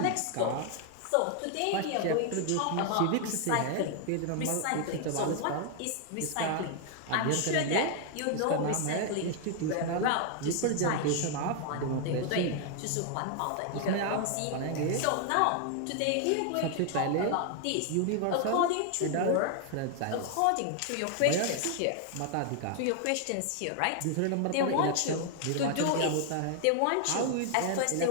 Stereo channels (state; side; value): different; both; correlation 0.00